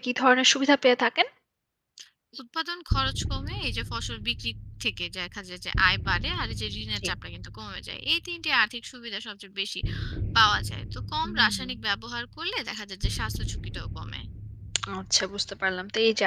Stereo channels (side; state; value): both; identical; correlation 1.00